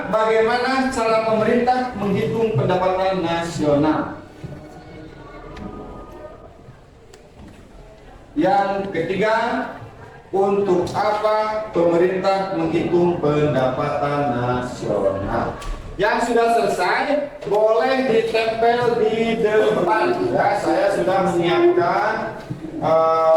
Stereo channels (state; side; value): identical; both; correlation 1.00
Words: bagaimana cara pemerintah menghitung pendapatan nasional? Yang ketiga, untuk apa pemerintah menghitung pendapatan nasional? Yang sudah selesai boleh ditempel di depan. Ya, saya sudah menyiapkan